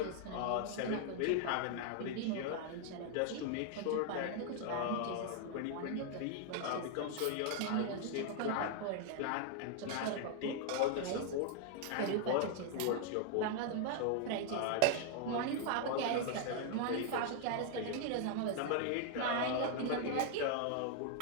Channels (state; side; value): different; both; correlation 0.00